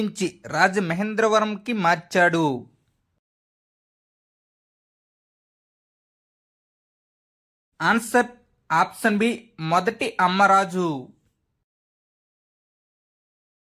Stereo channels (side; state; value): both; identical; correlation 1.00